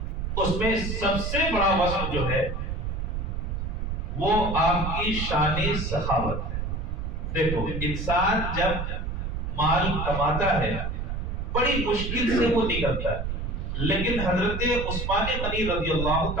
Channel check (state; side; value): noise; right; rumble, 3 dB below the sound